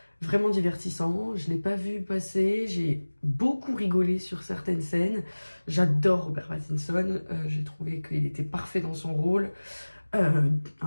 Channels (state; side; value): inverted; both; correlation -1.00